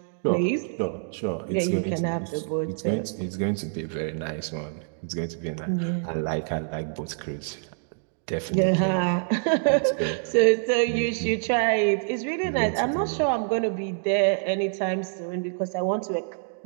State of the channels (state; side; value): silent; left; digital silence